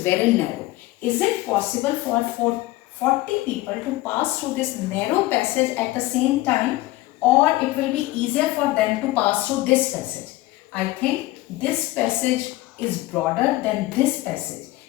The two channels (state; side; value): quieter; right; 18.3 dB